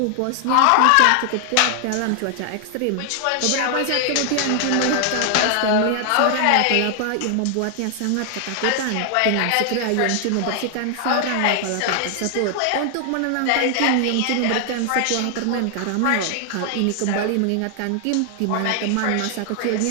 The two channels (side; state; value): both; different; correlation 0.00